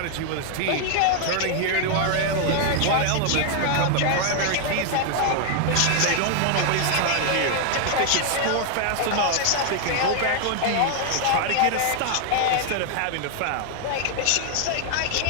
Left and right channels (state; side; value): different; both; correlation 0.00